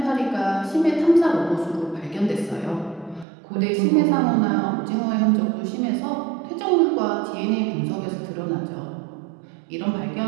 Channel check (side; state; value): left; drops out; at 3.2 s